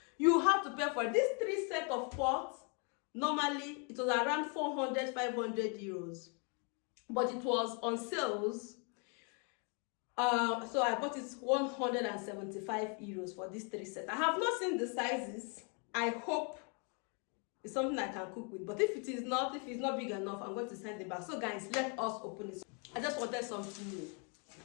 You have to pay for it. These 3 sets of pots, normally it was around 400, 500 euros. But it was on sales. So I bought it 175 euros for these 3 sets. I have not seen the sizes. I hope it's something I can cook with. But if it's not big enough, I'm going to send it back. So guys, let us open it. I just wanted something new.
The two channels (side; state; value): right; quieter; 37.0 dB